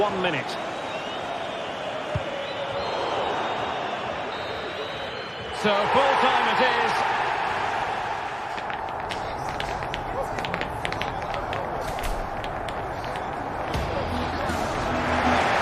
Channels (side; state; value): both; identical; correlation 1.00